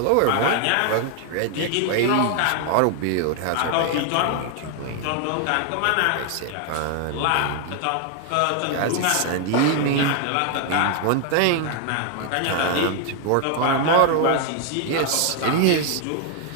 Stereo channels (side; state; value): both; different; correlation 0.00